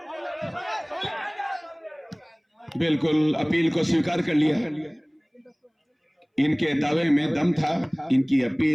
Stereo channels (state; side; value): identical; both; correlation 1.00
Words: बिल्कुल अपील को स्वीकार कर लिया। इनके दावे में दम था, इनकी